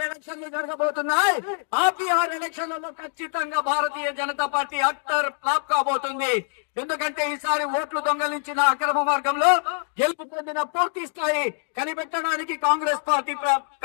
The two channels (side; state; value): right; silent; 62 dB below the other